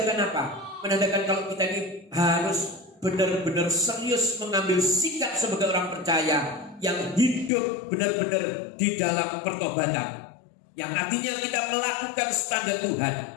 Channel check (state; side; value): drops out; right; at 7.5 s